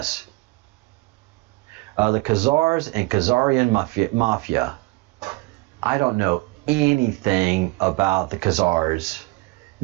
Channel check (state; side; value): quieter; left; 23.3 dB